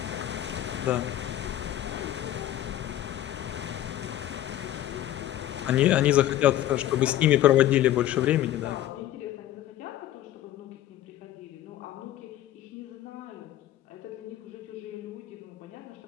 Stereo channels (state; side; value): quieter; right; 13.1 dB